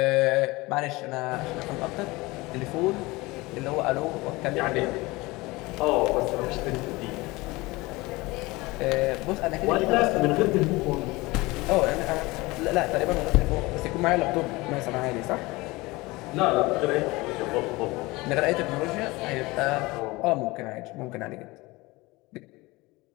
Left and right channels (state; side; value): quieter; right; 22.0 dB